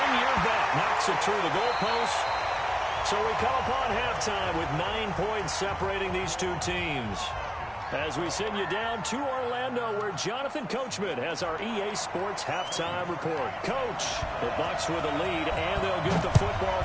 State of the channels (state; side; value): identical; both; correlation 1.00